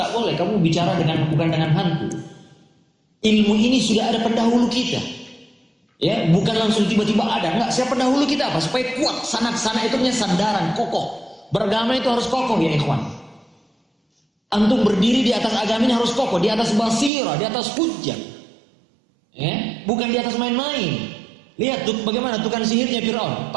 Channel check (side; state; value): left; drops out; at 17.1 s